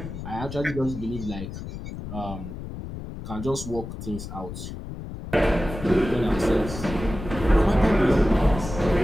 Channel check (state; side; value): noise; left; rumble, 9 dB below the sound